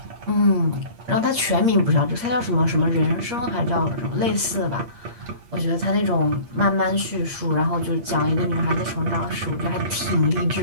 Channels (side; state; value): left; late; 8.5 ms